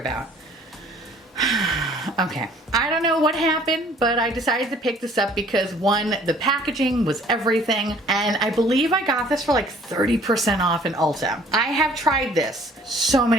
Okay, I don't know what happened, but I decided to pick this up because one, the packaging was everything, and I believe I got this for like 30% off in Ulta. I have tried this so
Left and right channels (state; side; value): normal; both; correlation 0.56